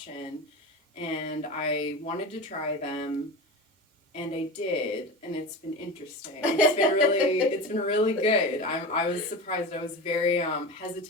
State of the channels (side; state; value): both; normal; correlation 0.28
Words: and I wanted to try them, and I did, and it's been interesting. It's been really good. I was surprised. I was very